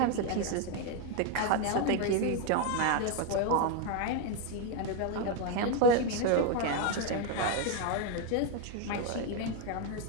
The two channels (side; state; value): both; different; correlation 0.01